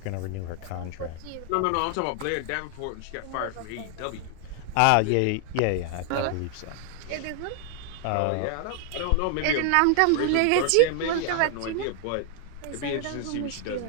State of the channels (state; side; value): different; both; correlation 0.00